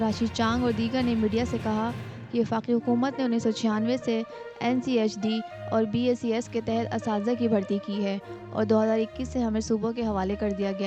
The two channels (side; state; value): both; identical; correlation 1.00